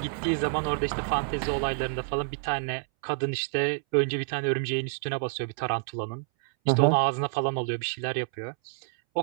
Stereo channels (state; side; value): silent; left; 59 dB below the other